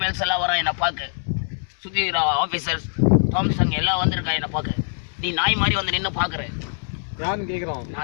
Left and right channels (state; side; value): silent; right; digital silence